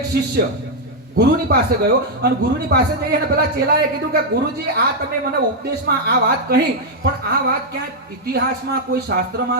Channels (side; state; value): both; normal; correlation -0.01